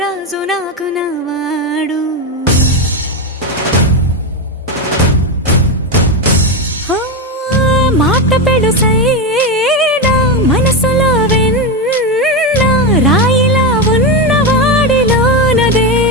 నాకు నవాడు. మాట పెడుసైనా మనసులో వెన్న రాయిలా ఉన్నవాడిలోన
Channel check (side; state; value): both; normal; correlation 0.11